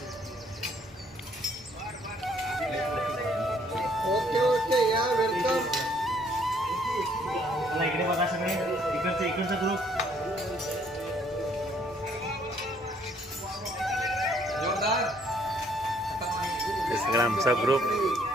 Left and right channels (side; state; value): both; normal; correlation 0.64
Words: ओके ओके या वेलकम। इकडे बघा सगळे इकडचा ग्रुप सगळा आमचा ग्रुप